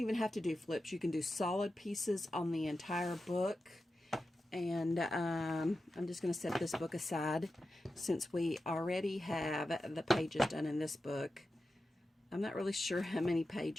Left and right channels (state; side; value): normal; both; correlation 0.91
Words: have to do flips. You can do solid pieces on the entire book. And I'm just going to set this book aside since we already have the pages done in this book. I'm not really sure how many